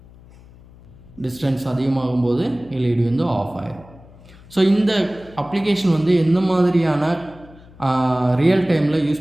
டிஸ்டன்ஸ் அதிகமாகும்போது எல்இடி வந்து ஆஃப் ஆயிடும். ஸோ இந்த அப்ளிகேஷன் வந்து எந்த மாதிரியான ரியல் டைமில்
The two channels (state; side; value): noise; left; hum, 23 dB below the sound